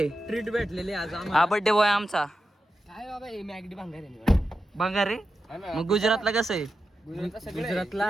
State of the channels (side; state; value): both; normal; correlation 0.90